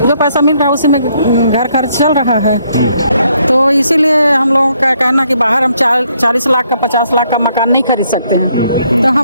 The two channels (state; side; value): inverted; both; correlation -0.71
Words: जो पैसा मिल रहा है उसी में घर खर्च चल रहा है। तो इसीलिए हम लोगों का कहना कि बाहर हम 40 लाख का 50 लाख का मकान नहीं खरीद सकते हैं, तो